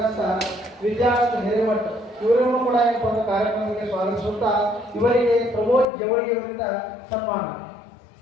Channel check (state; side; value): drops out; right; at 5.9 s